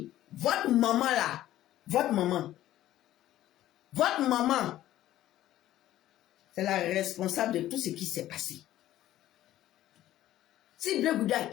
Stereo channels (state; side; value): quieter; right; 13.7 dB